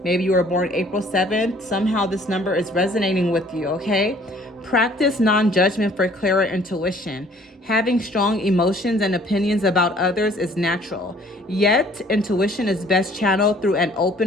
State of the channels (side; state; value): both; normal; correlation 0.56